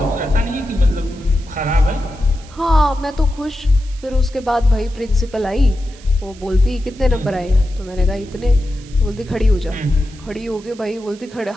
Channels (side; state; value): right; noise; hiss, 23 dB below the sound